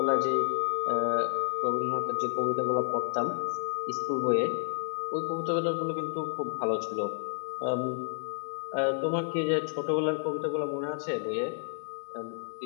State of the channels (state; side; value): silent; right; digital silence